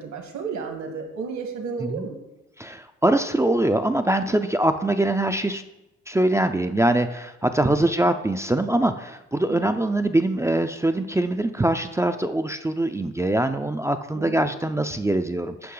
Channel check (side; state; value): both; normal; correlation 0.80